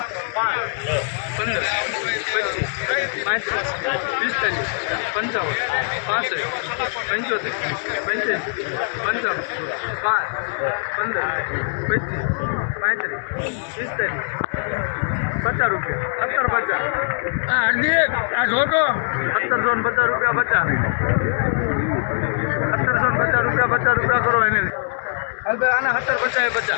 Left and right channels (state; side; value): silent; right; digital silence